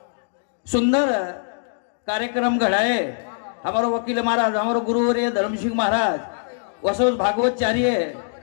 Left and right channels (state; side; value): silent; right; digital silence